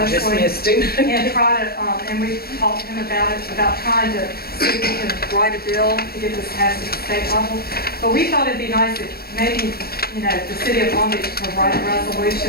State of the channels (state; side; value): late; right; 0.45 ms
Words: And try to, and we've talked to him about it, about trying to see if we can write a bill to get this passed at the state level. But we thought it'd be nice if maybe, the city of Long Beach could write a